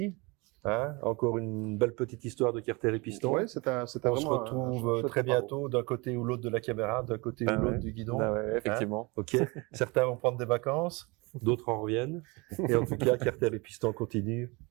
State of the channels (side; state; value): left; quieter; 26.8 dB